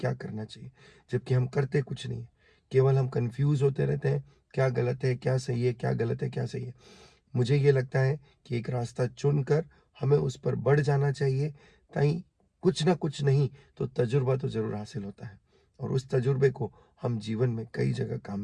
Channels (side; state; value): both; identical; correlation 1.00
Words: करना चाहिए, जबकि हम करते कुछ नहीं है। केवल हम कंफ्यूज होते रहते हैं, क्या गलत है क्या सही है, क्या गलत है क्या सही है। मुझे ये लगता है कि एक रास्ता चुनकर हमें उस पर बढ़ जाना चाहिए, ताकि कुछ ना कुछ नहीं तो तजुर्बा तो जरूर हासिल होता है, और उस तजुर्बे को हम जीवन में कई जगह काम